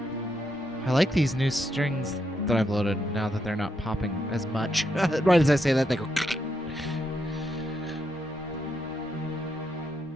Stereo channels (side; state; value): both; normal; correlation 0.80